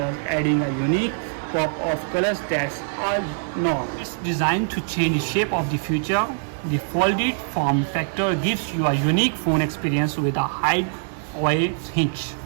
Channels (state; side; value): silent; left; 63 dB below the other